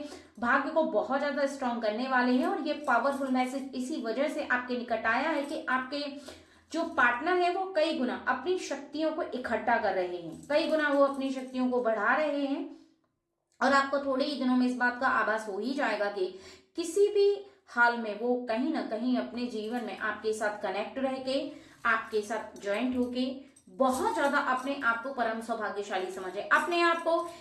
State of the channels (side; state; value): both; identical; correlation 1.00